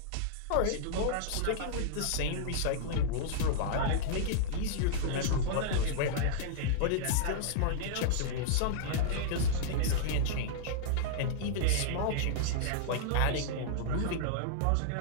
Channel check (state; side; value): different; both; correlation -0.02